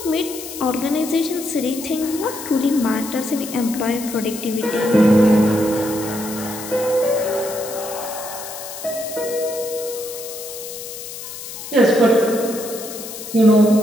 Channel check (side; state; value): left; noise; hiss, 11 dB below the sound